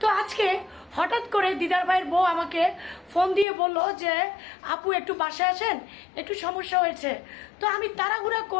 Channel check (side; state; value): right; drops out; at 3.5 s